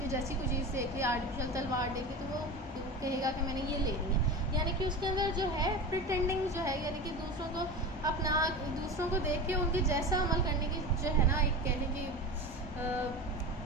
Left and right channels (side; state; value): both; normal; correlation 0.28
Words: जैसी कोई चीज़ देख ली, आर्टिफिशियल तलवार देख ली, तो वो कहेगा कि मैंने ये लेनी है। यानी कि उसके अंदर जो है प्रिटेंडिंग जो है, यानी कि दूसरों को देख के उनके जैसा अमल करने की जो है ना, एक कहने की